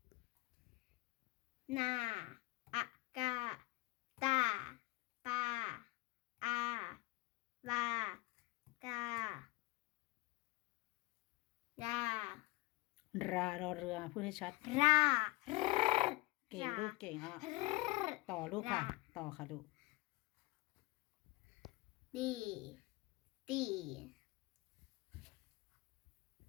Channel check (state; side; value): quieter; right; 21.1 dB